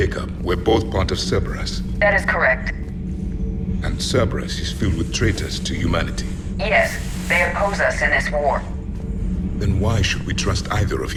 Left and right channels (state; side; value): identical; both; correlation 1.00